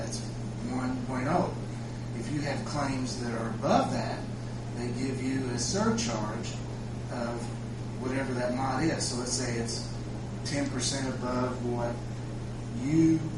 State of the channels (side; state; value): both; identical; correlation 1.00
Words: 1.0. If you have claims that are above that, they give you a surcharge of whatever that mod is. So let's say it's 10% above what you